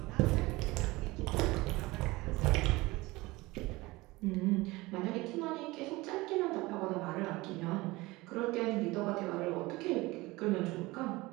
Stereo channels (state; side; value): quieter; left; 21.2 dB